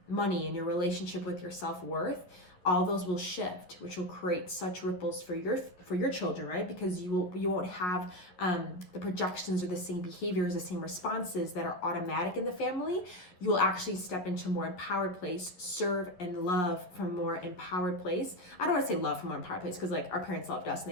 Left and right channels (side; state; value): right; late; 11 ms